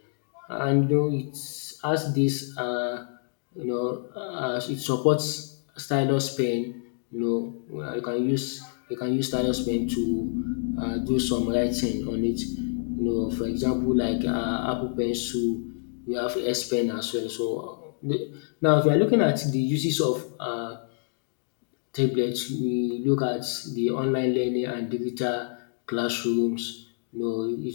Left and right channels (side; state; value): right; silent; digital silence